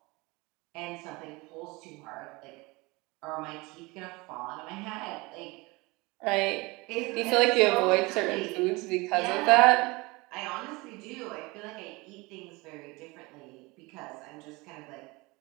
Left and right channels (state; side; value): quieter; left; 24.2 dB